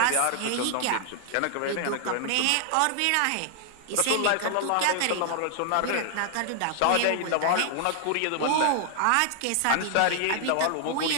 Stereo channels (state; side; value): different; both; correlation 0.00